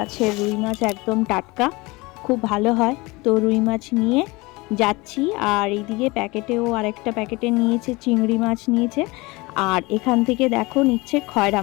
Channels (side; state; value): right; quieter; 23.5 dB